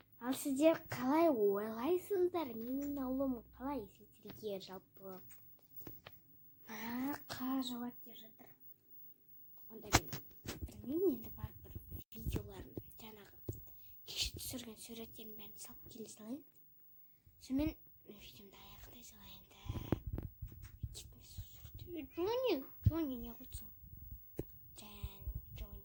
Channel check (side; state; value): both; identical; correlation 1.00